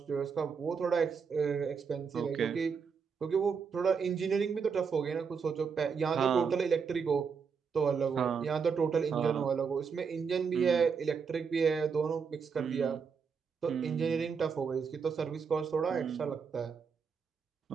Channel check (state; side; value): quieter; left; 6.0 dB